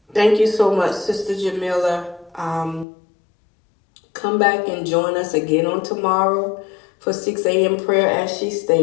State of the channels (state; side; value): drops out; right; at 2.9 s